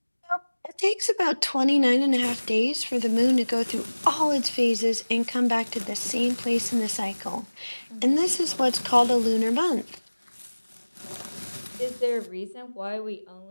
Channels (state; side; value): inverted; both; correlation -1.00